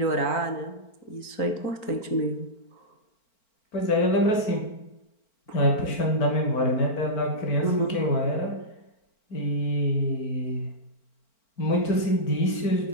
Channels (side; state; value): right; late; 4.4 ms